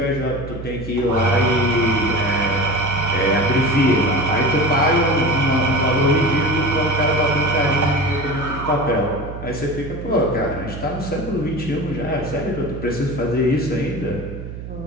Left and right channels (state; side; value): noise; right; hum, 10 dB below the sound